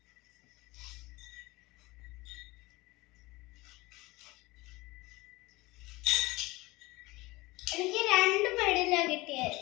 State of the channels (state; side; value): quieter; right; 21.4 dB